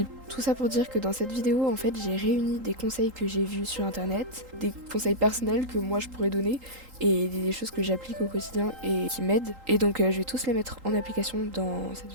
Tout ça pour dire que dans cette vidéo, en fait, j'ai réuni des conseils que j'ai vus sur internet, des conseils personnels que moi je pourrais donner et des choses que j'applique au quotidien et qui m'aident. Et donc je vais tous les mettre en application dans cette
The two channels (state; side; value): late; left; 3.8 ms